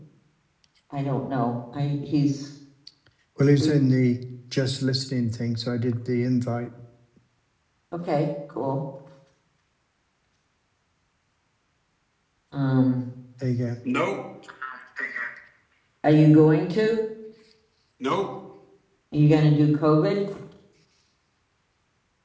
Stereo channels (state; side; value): identical; both; correlation 1.00